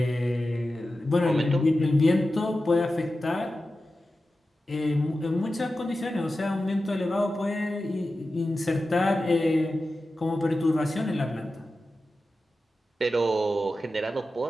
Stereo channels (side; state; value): both; normal; correlation 0.93